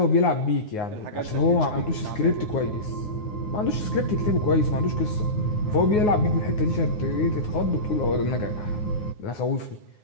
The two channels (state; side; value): late; right; 9.6 ms